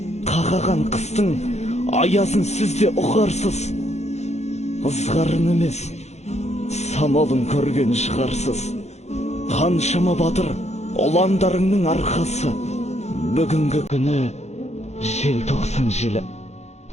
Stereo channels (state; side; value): late; right; 0.32 ms